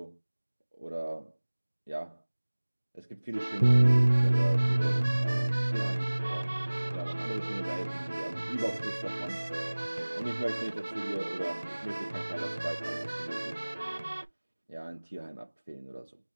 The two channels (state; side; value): inverted; both; correlation -1.00